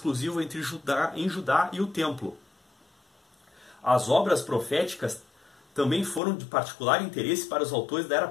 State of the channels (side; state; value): right; drops out; at 6.2 s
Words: em Judá e o Templo. As obras proféticas também foram de particular interesse para os autores da era